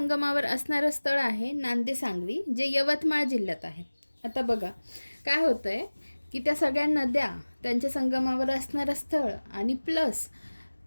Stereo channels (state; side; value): inverted; both; correlation -1.00